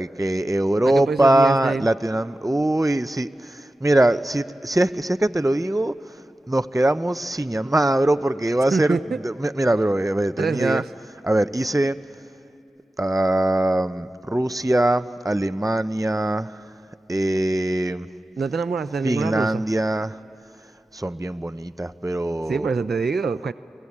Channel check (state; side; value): normal; both; correlation 0.94